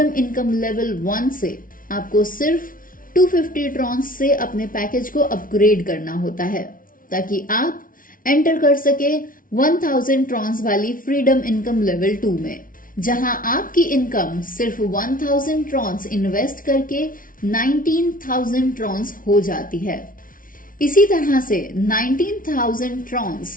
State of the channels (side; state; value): right; late; 0.39 ms